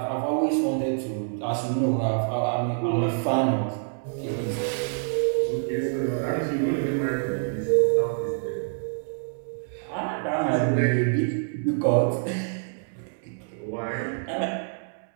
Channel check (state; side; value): silent; left; digital silence